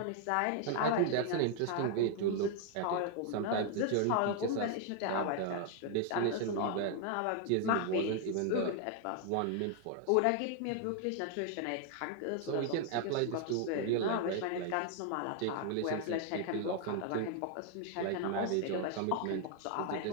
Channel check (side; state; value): both; different; correlation 0.00